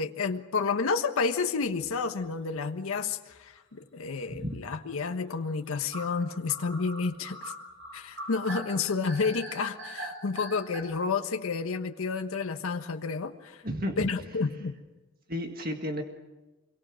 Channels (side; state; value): right; quieter; 3.9 dB